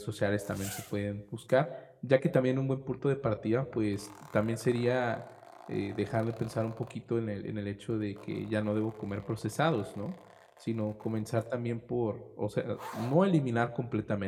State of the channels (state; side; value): identical; both; correlation 1.00